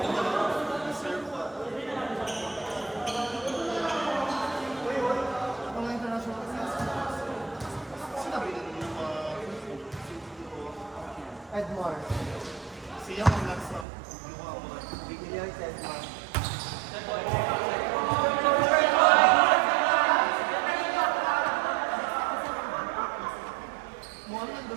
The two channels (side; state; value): left; drops out; at 13.9 s